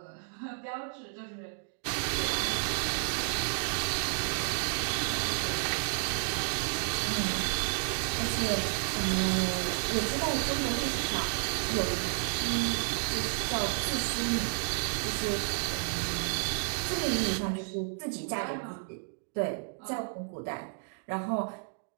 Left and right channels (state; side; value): silent; left; digital silence